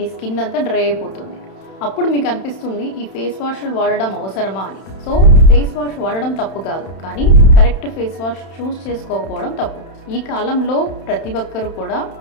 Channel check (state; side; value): late; right; 31 ms